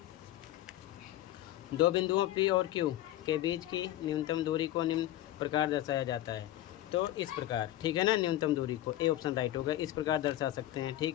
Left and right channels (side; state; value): right; quieter; 14.3 dB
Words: दो बिंदुओं P और Q के बीच की न्यूनतम दूरी को निम्न प्रकार दर्शाया जाता है। तो इस प्रकार, ठीक है ना, न्यूनतम दूरी को, ए ऑप्शन राइट होगा। इस प्रकार दर्शा सकते हैं।